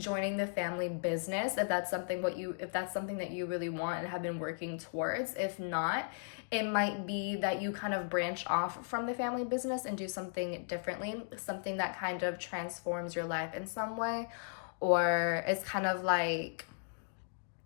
the family business if that's something that you really want and have been working towards. If not, it might be that you kind of branch off from the family business and do something differently, something that kind of transforms your life in some way, or it's kind of like,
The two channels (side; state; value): right; silent; digital silence